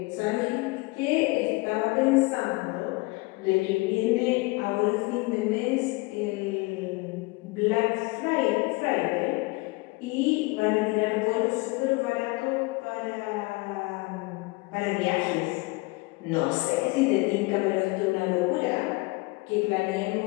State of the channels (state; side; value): quieter; right; 24.7 dB